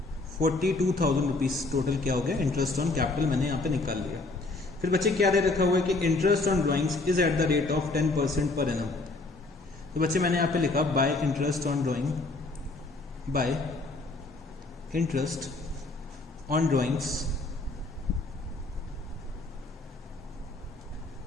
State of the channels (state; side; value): quieter; right; 3.2 dB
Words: 42,000 रुपीज। टोटल क्या हो गया इंटरेस्ट ऑन कैपिटल मैंने यहाँ पे निकाल लिया। फिर बच्चे क्या दे रखा हुआ है कि interest on drawings is at the rate of 10% per annum. तो बच्चे मैंने यहाँ पे लिखा by interest on drawing, bye interest on drawings